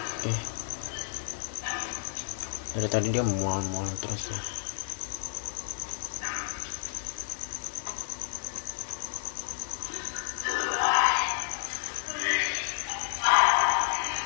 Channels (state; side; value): silent; right; digital silence